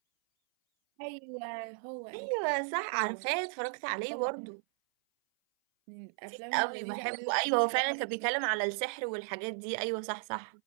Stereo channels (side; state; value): left; silent; 55 dB below the other